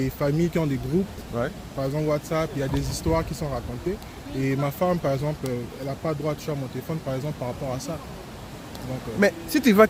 familles qui ont des groupes. Ouais. Par exemple, WhatsApp, il y a des histoires qui sont racontées. Et ma femme, par exemple, elle n'a pas le droit de toucher à mon téléphone, par exemple, par rapport à ça. Donc, Mais si tu vois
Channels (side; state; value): both; identical; correlation 1.00